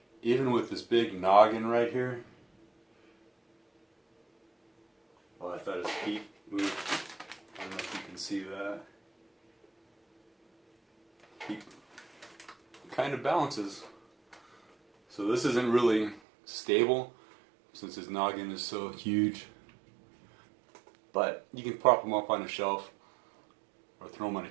Even with this big noggin right here. Oh, I thought his feet moved. I don't know if you can see that. kind of balances. So this isn't really stable since his noggin is so huge. But you can prop them up on a shelf or throw them on a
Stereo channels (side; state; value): left; drops out; at 16.2 s